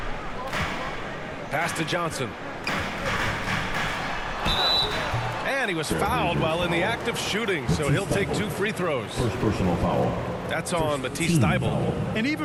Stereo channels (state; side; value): identical; both; correlation 1.00